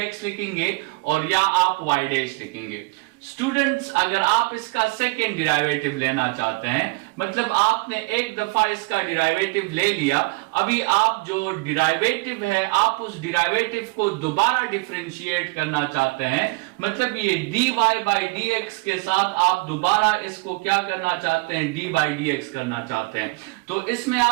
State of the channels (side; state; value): left; quieter; 26.3 dB